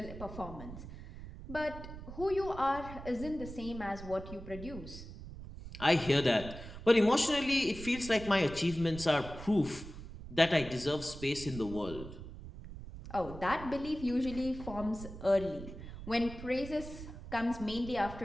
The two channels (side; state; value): right; noise; rumble, 12 dB below the sound